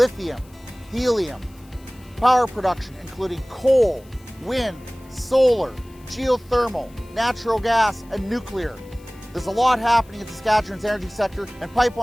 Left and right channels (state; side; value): noise; left; hiss, 28 dB below the sound